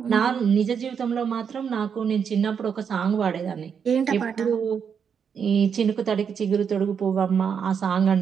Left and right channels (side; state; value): left; quieter; 7.1 dB